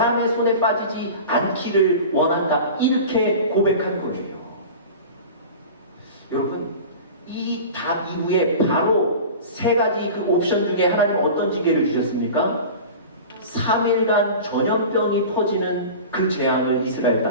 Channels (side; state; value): both; inverted; correlation -0.35